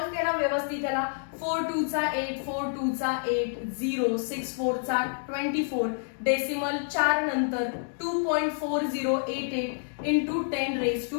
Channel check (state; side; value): silent; right; digital silence